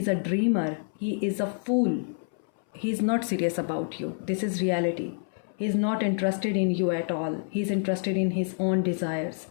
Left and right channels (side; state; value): right; silent; 60 dB below the other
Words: a dreamer, he is a fool, he is not serious about you, this is reality. He is not interested in you at all, he is interested in his own desires.